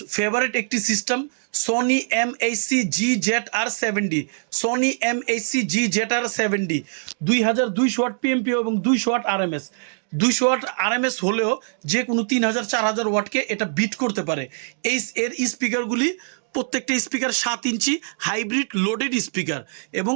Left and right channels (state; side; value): silent; left; digital silence